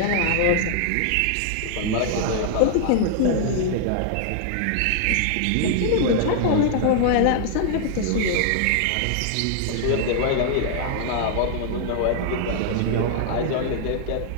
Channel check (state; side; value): different; both; correlation 0.00